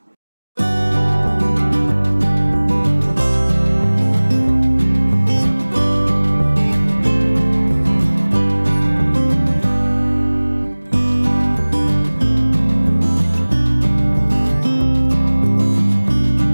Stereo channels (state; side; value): inverted; both; correlation -1.00